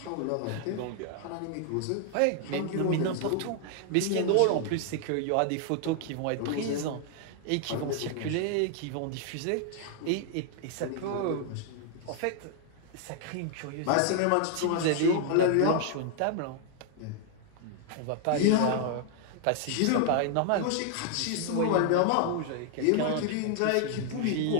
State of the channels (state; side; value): different; both; correlation 0.00